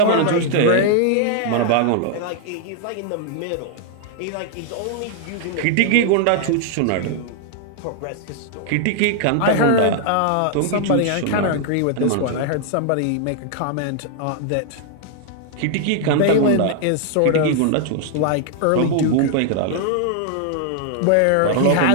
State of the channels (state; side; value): different; both; correlation 0.00